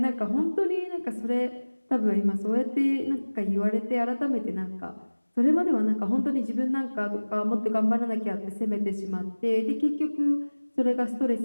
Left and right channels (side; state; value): both; inverted; correlation -1.00